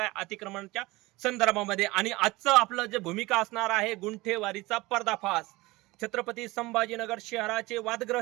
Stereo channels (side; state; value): left; quieter; 21.0 dB